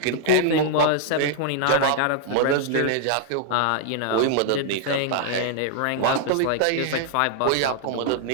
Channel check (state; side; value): different; both; correlation -0.01